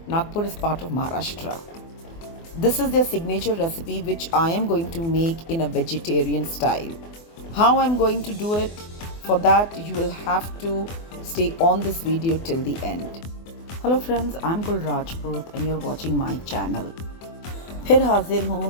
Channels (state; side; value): late; right; 24 ms